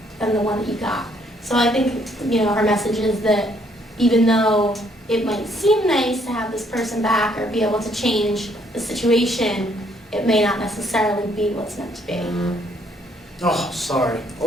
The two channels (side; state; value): both; normal; correlation 0.67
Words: than the one that you got. So I think, her message is that even though it might seem nice to have this person back or be able to change the situation, it may not necessarily be what's meant to be. Oh, sorry.